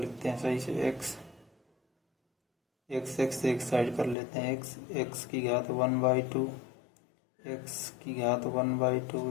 हैं सही से। x एक साइड कर लेते हैं, x की घात 1/2, x की घात 1/2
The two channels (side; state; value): right; drops out; at 4.2 s